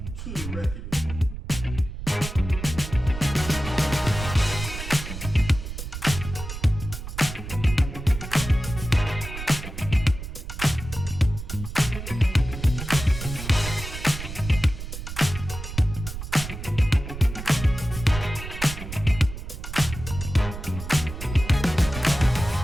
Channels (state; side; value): noise; right; rumble, 8 dB below the sound